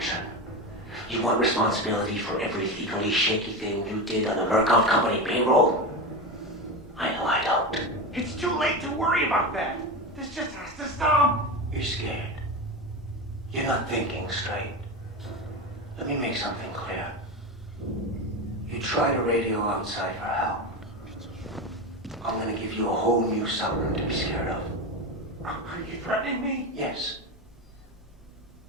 You want responsibility for every legally shaky thing you did on the Murkoff Company payroll? I know I don't. It's too late to worry about that. This just has to stop. You're scared. You're not thinking straight. Let me make something clear. You try to radio outside for help. I'm gonna give you a whole new something to be scared of. Are you threatening me? Yes.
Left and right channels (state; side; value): normal; both; correlation 0.20